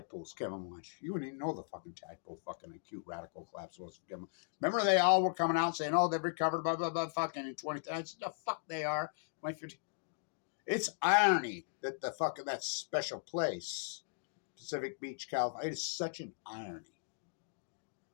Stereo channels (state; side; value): silent; right; digital silence